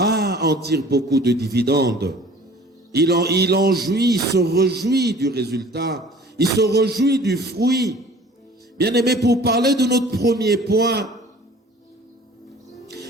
tire beaucoup de dividendes. Il en jouit, il se réjouit du résultat. Il se réjouit du fruit. Bien-aimé, pour parler de notre premier point,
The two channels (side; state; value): both; normal; correlation 0.48